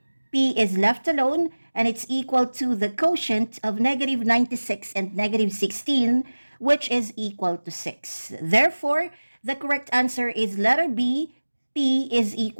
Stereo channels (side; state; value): both; inverted; correlation -1.00